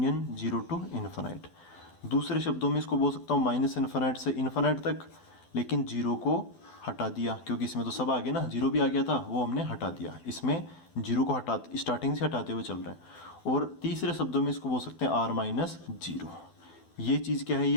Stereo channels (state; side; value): late; right; 12 ms